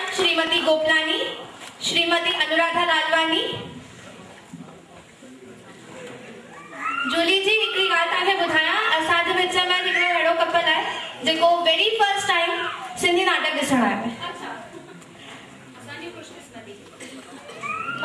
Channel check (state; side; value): identical; both; correlation 1.00